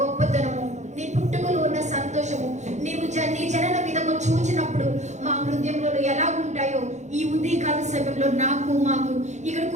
గొప్పతనము, నీ పుట్టుకలో ఉన్న సంతోషము, నీ జనన విధము చూచినప్పుడు మా హృదయంలో ఎలా ఉంటాయో ఈ ఉదయకాల సమయంలో నాకు, మాకు ఇక్కడ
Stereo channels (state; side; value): late; left; 0.34 ms